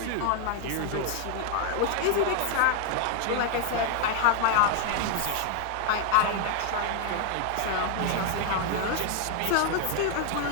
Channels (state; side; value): different; both; correlation 0.00